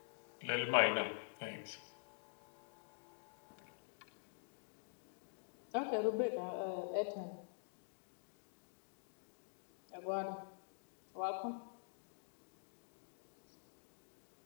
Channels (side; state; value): right; silent; digital silence